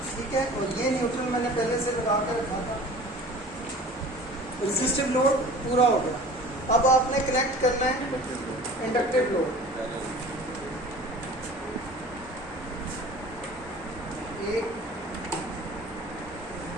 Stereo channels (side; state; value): both; normal; correlation 0.43